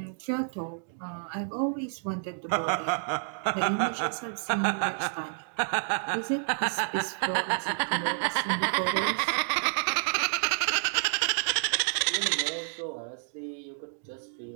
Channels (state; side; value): silent; left; digital silence